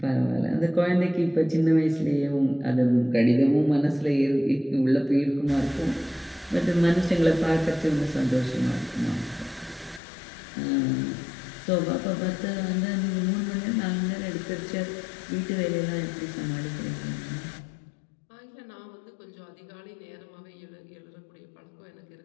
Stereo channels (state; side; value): drops out; right; at 10.0 s